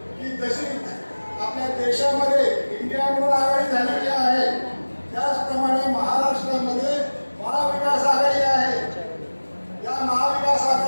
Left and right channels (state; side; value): inverted; both; correlation -1.00